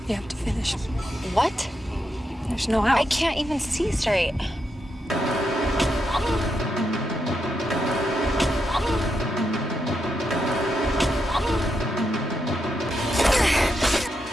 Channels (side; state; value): both; normal; correlation 0.83